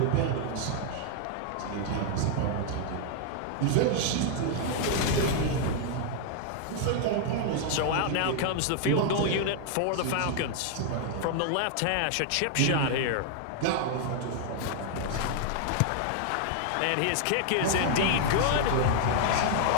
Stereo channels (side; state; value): both; different; correlation 0.00